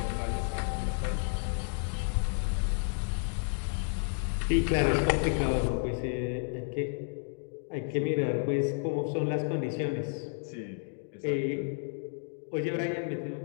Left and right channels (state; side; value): silent; right; 57 dB below the other